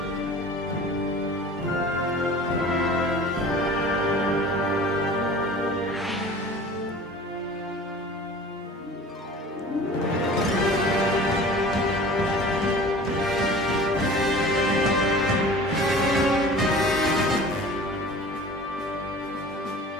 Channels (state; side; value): normal; both; correlation 0.42